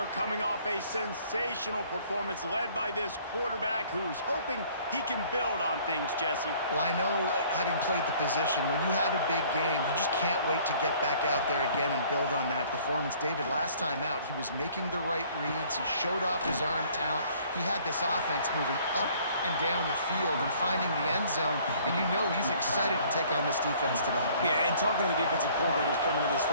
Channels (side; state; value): both; inverted; correlation -0.56